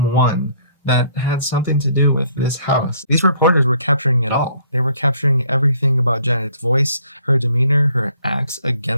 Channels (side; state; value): both; inverted; correlation -0.62